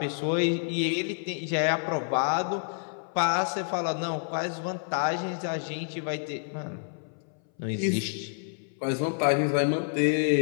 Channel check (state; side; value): silent; right; 59 dB below the other